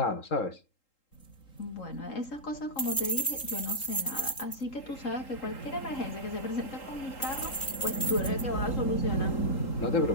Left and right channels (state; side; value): late; right; 3.8 ms